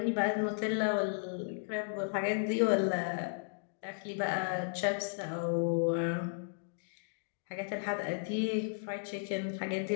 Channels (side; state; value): right; silent; digital silence